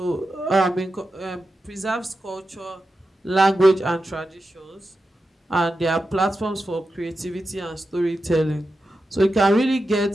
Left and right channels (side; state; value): both; normal; correlation 0.90